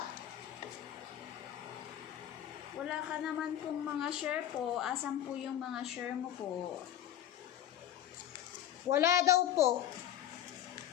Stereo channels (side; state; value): right; quieter; 11.4 dB